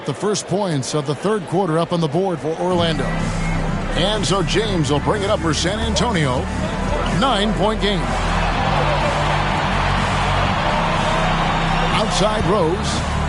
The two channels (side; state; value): both; identical; correlation 1.00